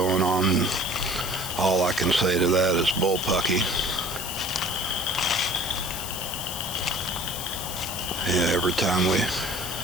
on. All I can say to that is bullpucky. Yeah, every time we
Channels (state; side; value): noise; left; hiss, 7 dB below the sound